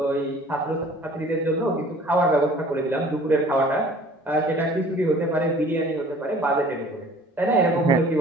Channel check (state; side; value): normal; both; correlation 0.50